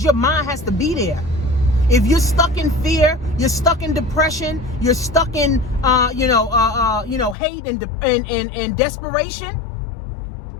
your mind has to be there. If you're stuck in fear, you're stuck in depression, you're stuck in hate and desperation,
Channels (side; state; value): right; drops out; at 7.4 s